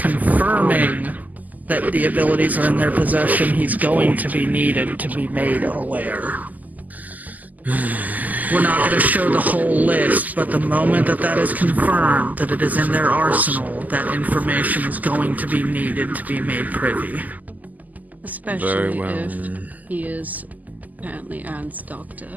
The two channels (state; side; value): late; left; 0.080 ms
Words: that the abilities are in their possession, he's going to be needed to be made aware. We're not going to show the whole list, but the moment that that is confirmed, that it is in their arsenal, that information is going to be needed to be made privy. Especially if he is apparently Anne's doctor,